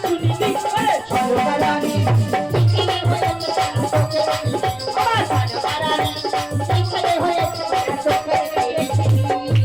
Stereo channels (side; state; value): right; noise; rumble, 28 dB below the sound